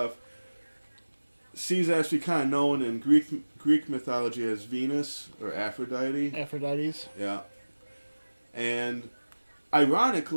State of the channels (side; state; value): both; inverted; correlation -1.00